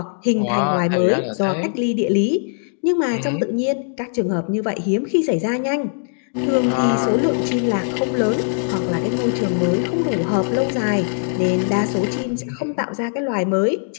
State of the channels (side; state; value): right; silent; digital silence